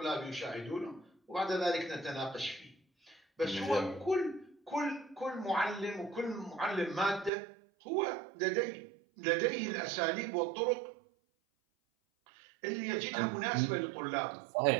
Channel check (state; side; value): drops out; left; at 7.3 s